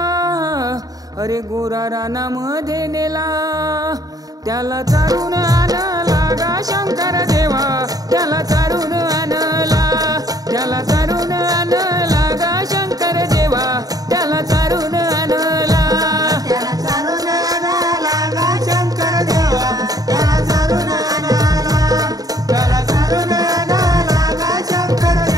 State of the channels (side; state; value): left; late; 0.18 ms